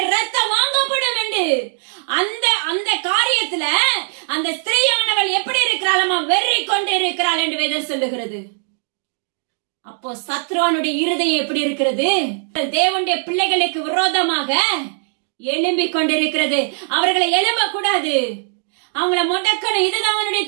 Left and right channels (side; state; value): left; silent; digital silence